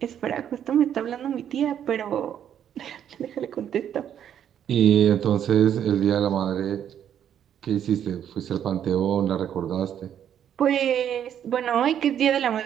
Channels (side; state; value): left; quieter; 9.5 dB